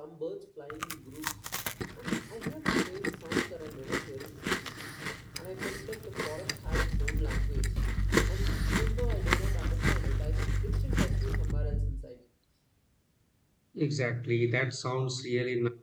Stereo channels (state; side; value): identical; both; correlation 1.00